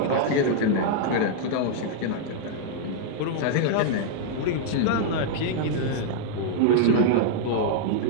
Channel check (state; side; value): different; both; correlation -0.01